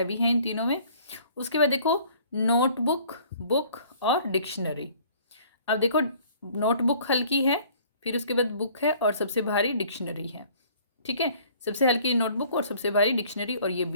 है इन तीनों में। उसके बाद देखो नोटबुक, बुक और डिक्शनरी। अब देखो नोटबुक हल्की है, फिर उसके बाद बुक है और सबसे भारी डिक्शनरी है। ठीक है, सबसे हल्की नोटबुक और सबसे भारी डिक्शनरी, और ये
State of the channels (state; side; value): inverted; both; correlation -0.55